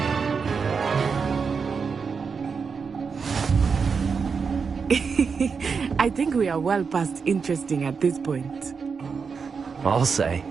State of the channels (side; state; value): left; quieter; 5.5 dB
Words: I think we are well past interesting at this point. I'll say.